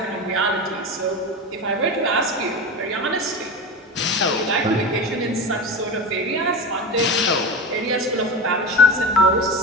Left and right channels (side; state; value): both; normal; correlation 0.25